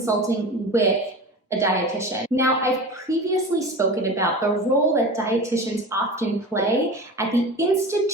with a dietitian. Now, I've previously spoken about the role that dietitians often play at the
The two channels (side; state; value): both; normal; correlation 0.32